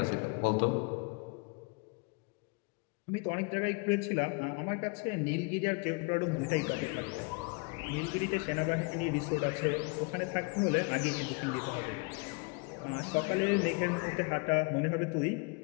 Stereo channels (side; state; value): right; quieter; 30.9 dB